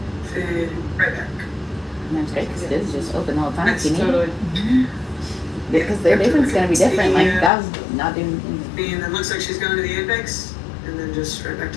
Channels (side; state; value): right; drops out; at 7.5 s